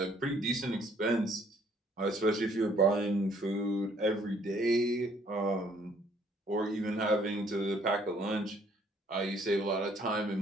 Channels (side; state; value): both; normal; correlation 0.63